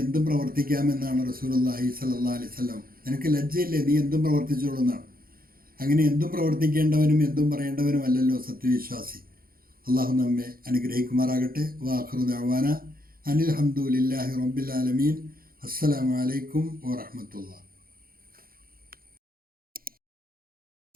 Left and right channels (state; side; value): late; left; 0.42 ms